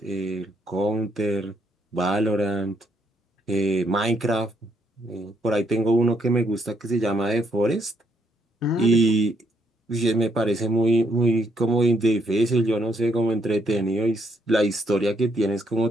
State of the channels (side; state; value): both; normal; correlation 0.72